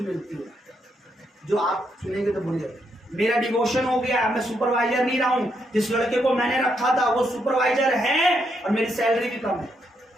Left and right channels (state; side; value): normal; both; correlation 0.78